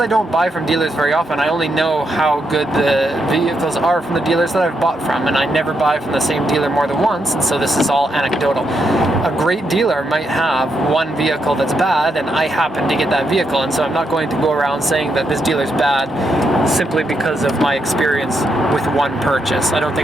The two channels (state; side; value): normal; both; correlation 0.80